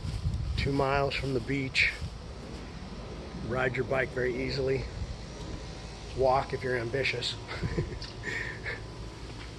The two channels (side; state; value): both; identical; correlation 1.00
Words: 2 miles from the beach. Ride your bike very easily. Walk if you're ambitious.